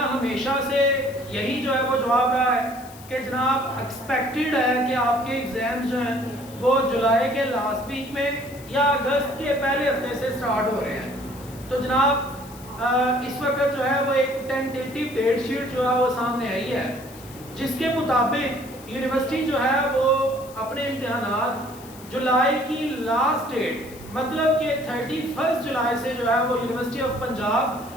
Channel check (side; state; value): left; noise; hiss, 20 dB below the sound